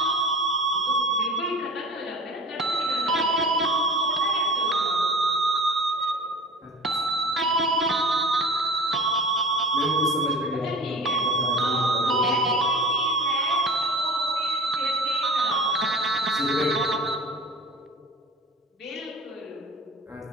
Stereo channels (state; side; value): normal; both; correlation 0.39